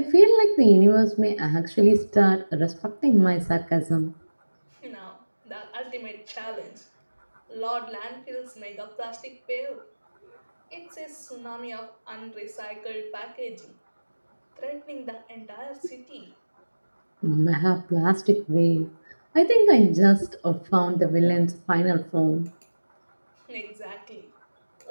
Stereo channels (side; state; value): both; inverted; correlation -1.00